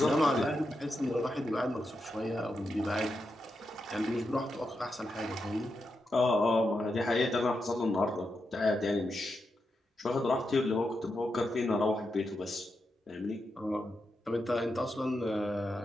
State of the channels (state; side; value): normal; both; correlation 0.86